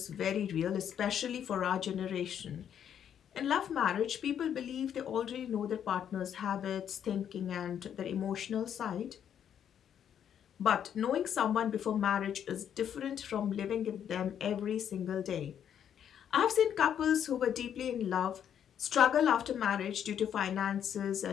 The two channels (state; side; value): quieter; right; 9.1 dB